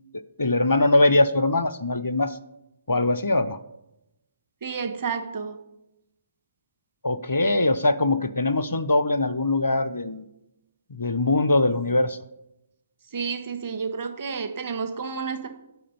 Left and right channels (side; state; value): both; inverted; correlation -0.79